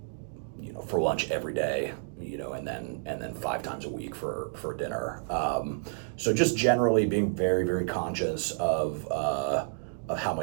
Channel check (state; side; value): silent; left; digital silence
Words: for lunch every day, and then 5 times a week for dinner. So just generally being very, very conscious of how